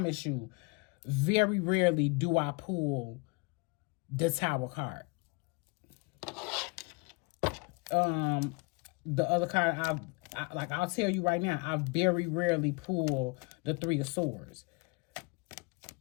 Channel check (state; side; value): quieter; right; 28.9 dB